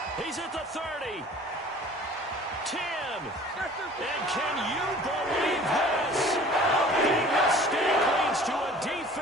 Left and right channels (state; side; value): normal; both; correlation 0.47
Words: He's at the 30. 10. And can you believe this? A big mistake leads to a